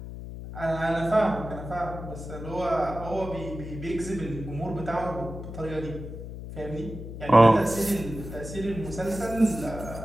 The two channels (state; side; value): noise; left; hum, 10 dB below the sound